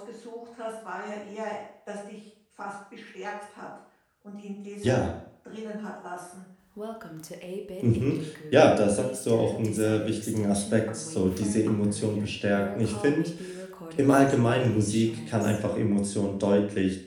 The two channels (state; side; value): identical; both; correlation 1.00